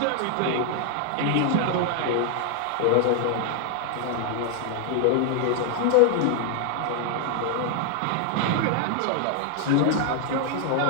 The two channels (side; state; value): both; different; correlation 0.00